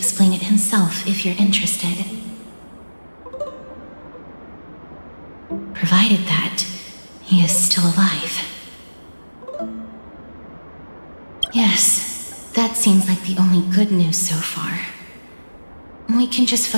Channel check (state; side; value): inverted; both; correlation -1.00